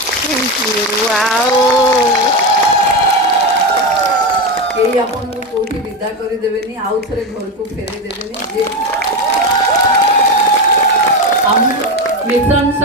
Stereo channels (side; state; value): both; normal; correlation 0.16